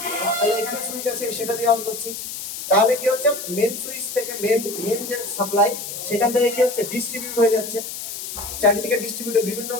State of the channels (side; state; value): left; noise; hiss, 8 dB below the sound